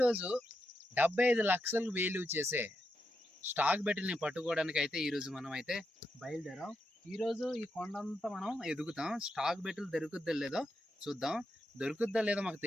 75 లక్షలు value చేసే స్టాక్ బెటిల్ని పట్టుకోవడానికి అయితే ఈరోజు మనం అయితే బయలుదేరాం. ఈరోజు ఈ కొండంతా మనం ఎదుగుతాం. స్టాక్ బెటిల్ దొరుకుద్దో లేదో చూద్దాం. దొరుకుద్దో లేదో మాకు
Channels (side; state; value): both; normal; correlation 0.85